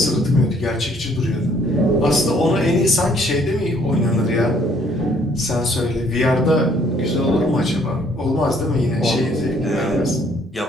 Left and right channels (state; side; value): normal; both; correlation 0.63